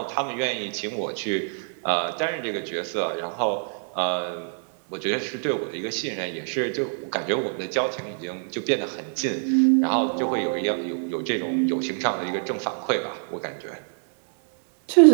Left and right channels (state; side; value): silent; left; 61 dB below the other